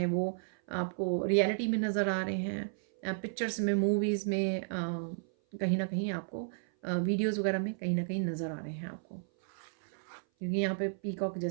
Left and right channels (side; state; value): left; silent; 56 dB below the other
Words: वो आपको रियलिटी में नज़र आ रहे हैं, पिक्चर्स में, मूवीज़ में, कहीं ना कहीं आपको वीडियोज़ वगैरह में कहीं ना कहीं नज़र आ रहे हैं आपको, क्योंकि यहाँ पे पीकॉक